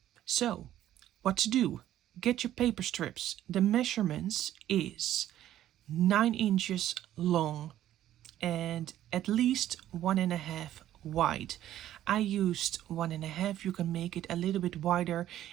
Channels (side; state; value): left; quieter; 12.5 dB